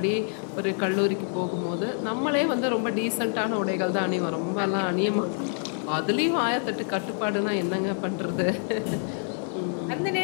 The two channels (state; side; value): silent; right; 57 dB below the other